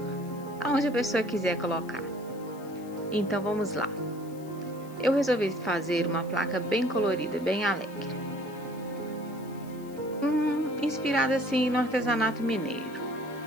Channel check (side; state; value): left; noise; hiss, 24 dB below the sound